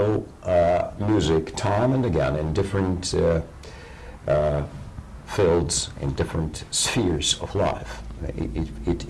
music time and again in different fields, in different spheres of life. It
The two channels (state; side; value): identical; both; correlation 1.00